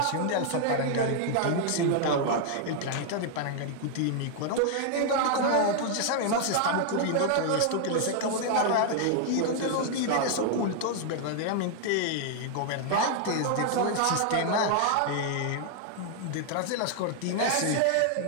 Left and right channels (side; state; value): both; different; correlation 0.00